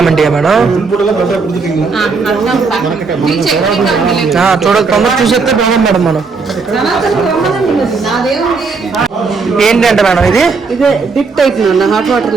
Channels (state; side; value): quieter; left; 4.6 dB